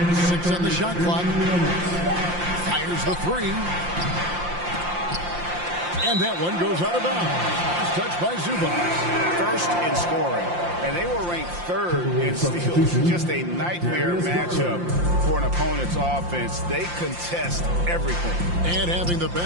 6 on the shot clock. Fires the 3. And that one goes out of bounds. Touched by Zubac. First in scoring. And they were ranked 3rd in steals. Just a nightmare matchup for an opponent's offense. They contest everything. And having the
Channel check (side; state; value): left; late; 5.7 ms